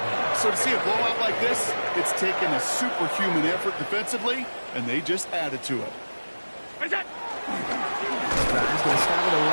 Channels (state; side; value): inverted; both; correlation -1.00